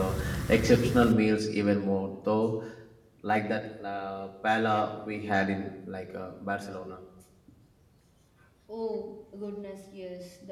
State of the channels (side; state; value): both; identical; correlation 1.00